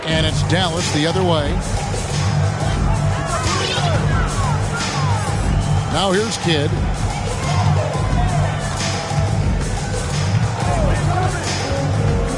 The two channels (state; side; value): identical; both; correlation 1.00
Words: And it's Dallas the other way. Now here's Kidd.